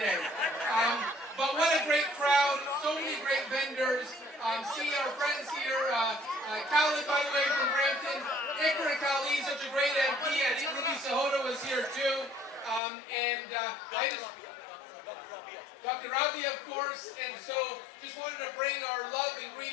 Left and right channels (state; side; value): drops out; right; at 12.8 s